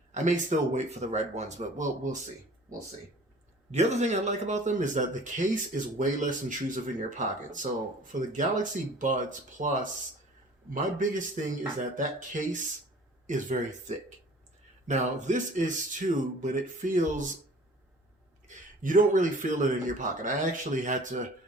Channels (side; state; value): both; normal; correlation 0.48